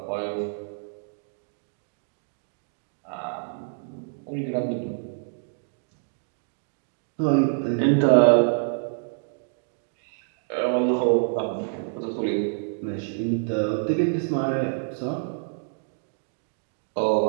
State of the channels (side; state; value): left; silent; digital silence